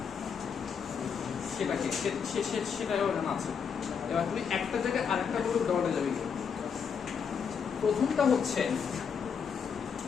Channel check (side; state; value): right; quieter; 6.6 dB